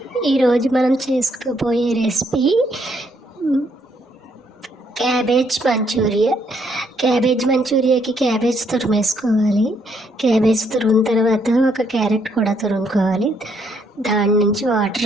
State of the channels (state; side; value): normal; both; correlation 0.71